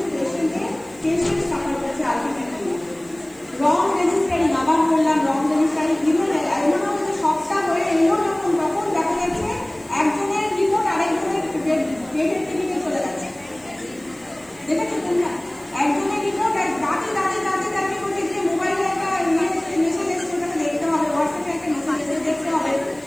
পেশেন্ট সাফার করছে আলটিমেটলি। রং রেজিস্টারিং, আবার বললাম রং রেজিস্টারিং, এমনও সবটা হয়ে এলো যখন তখন দেখা যাচ্ছে একজনের রিপোর্ট আরেকজনের পেটের টিভিতে চলে যাচ্ছে। দেখেছো তোমরা? একজনের রিপোর্ট দাঁড়িয়ে করতে গিয়ে মোবাইলে একটা মেসেজ এসছে, ওটাকে দেখতে হবে, হোয়াটসঅ্যাপে একটা মেসেজ এসে দেখতে হবে,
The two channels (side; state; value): right; noise; hiss, 26 dB below the sound